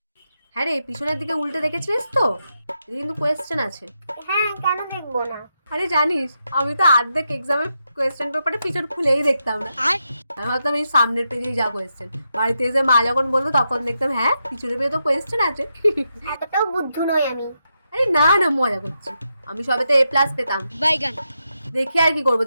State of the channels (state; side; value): inverted; both; correlation -0.85